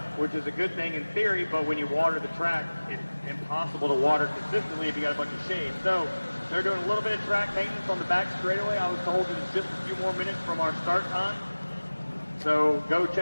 which is a good thing in theory, but when you water the track, it's impossible to water consistently if you got a bunch of shade. So they're doing a little bit of track maintenance on the back straightaway. I was told it's just a few more minutes from our start time. So go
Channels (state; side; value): inverted; both; correlation -1.00